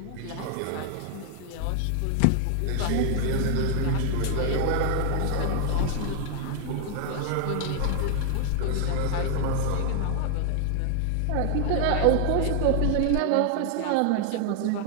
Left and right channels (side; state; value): both; different; correlation 0.00